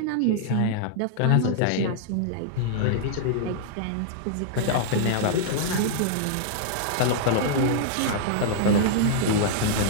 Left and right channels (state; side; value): different; both; correlation -0.01